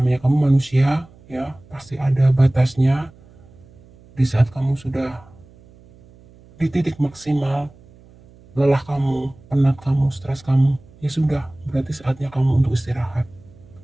kamu manusia ya, pasti ada batasnya. Di saat kamu sudah di titik maksimal, lelah kamu, penat kamu, stres kamu, ya sudah, berarti saatnya kamu untuk istirahat.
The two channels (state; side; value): noise; right; hum, 25 dB below the sound